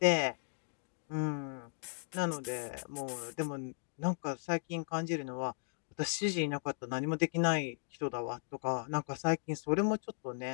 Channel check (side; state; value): right; silent; digital silence